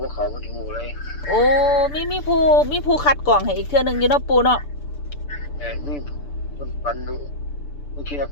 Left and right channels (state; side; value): late; right; 6.9 ms